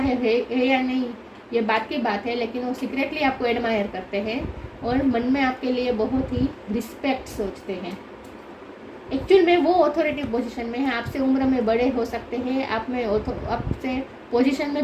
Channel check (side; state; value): both; identical; correlation 1.00